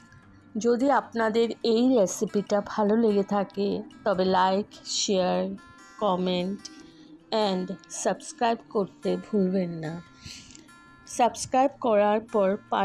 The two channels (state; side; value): identical; both; correlation 1.00